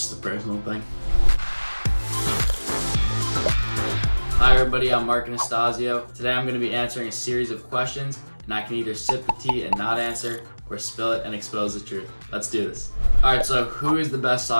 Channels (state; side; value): inverted; both; correlation -1.00